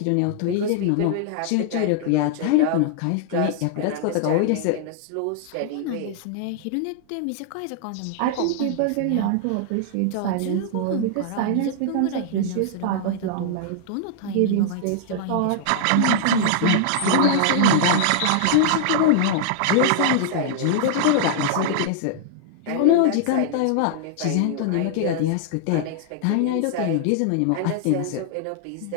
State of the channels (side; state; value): both; different; correlation -0.01